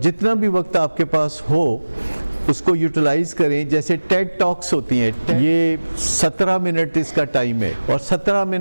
جتنا بھی وقت آپ کے پاس ہو اس کو یوٹیلائز کریں۔ جیسے ٹیڈ ٹاکس ہوتی ہیں، یہ 17 منٹ اس کا ٹائم ہے، اور 17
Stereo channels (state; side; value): inverted; both; correlation -1.00